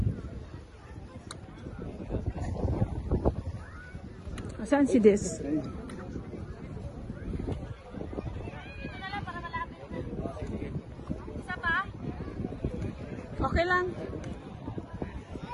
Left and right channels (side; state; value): both; identical; correlation 1.00